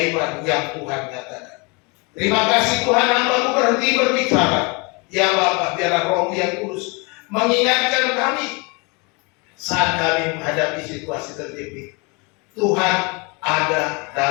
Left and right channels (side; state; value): right; quieter; 29.8 dB